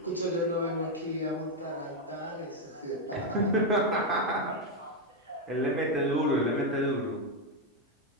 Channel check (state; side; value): normal; both; correlation 0.03